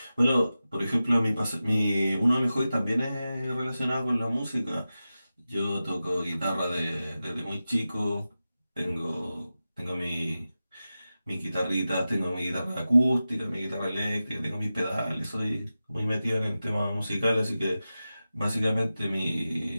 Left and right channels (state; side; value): inverted; both; correlation -0.93